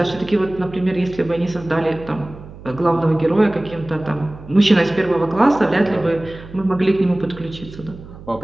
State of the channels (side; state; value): right; noise; hum, 17 dB below the sound